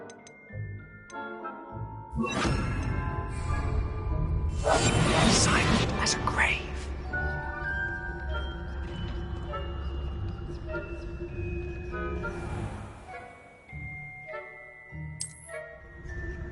Silent as a grave.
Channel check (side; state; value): both; identical; correlation 1.00